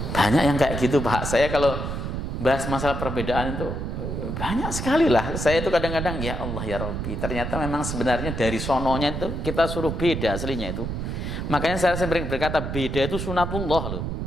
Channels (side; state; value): right; noise; rumble, 4 dB below the sound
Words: Banyak yang kayak gitu Pak. Saya kalau bahas masalah perbedaan itu banyak sekali lah. Saya itu kadang-kadang ya Allah ya Rabbi, ternyata memang sebenarnya dari sononya itu kita suruh beda aslinya itu. Makanya saya sering berkata beda itu sunatullah loh.